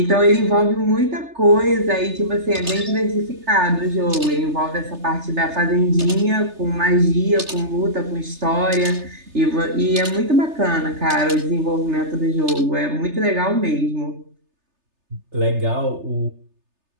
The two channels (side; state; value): left; late; 3.3 ms